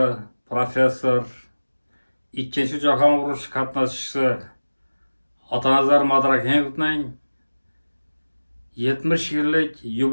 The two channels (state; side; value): inverted; both; correlation -1.00